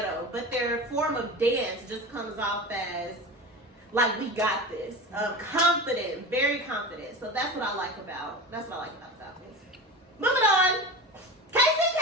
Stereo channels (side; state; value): both; normal; correlation 0.30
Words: but their form of dance just comes off as like, we got this. Confident, very confident. So that's what I like about the Falcons. Moving on. KCK!